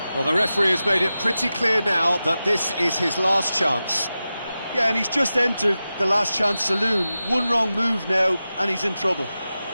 Well, the referee has made it pretty clear now that this is his last chance. Yeah, and he's just entered the last chance saloon. One wrong move now, and he's in trouble.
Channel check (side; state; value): both; inverted; correlation -0.93